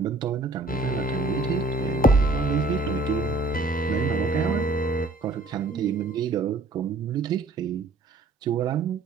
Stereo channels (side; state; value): left; quieter; 3.3 dB